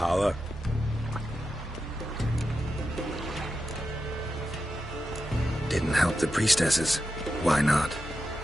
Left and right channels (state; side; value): normal; both; correlation 0.89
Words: Didn't help the priestesses. Why not?